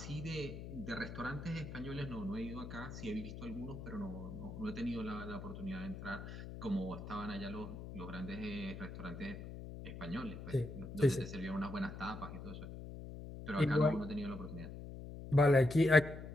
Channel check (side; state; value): left; noise; hum, 10 dB below the sound